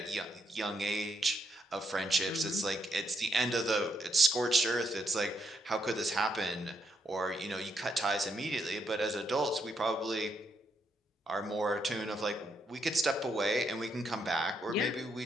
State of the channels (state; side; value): normal; both; correlation 0.77